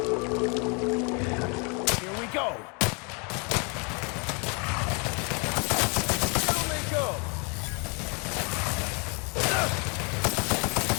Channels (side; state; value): right; quieter; 33.8 dB